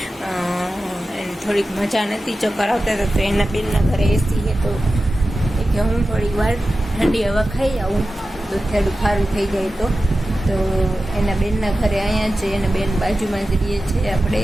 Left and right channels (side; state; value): both; normal; correlation 0.94